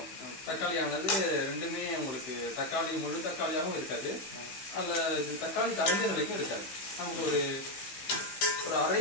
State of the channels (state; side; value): late; right; 15 ms